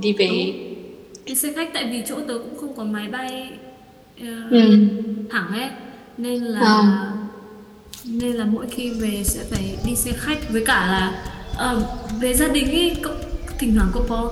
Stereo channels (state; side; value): identical; both; correlation 1.00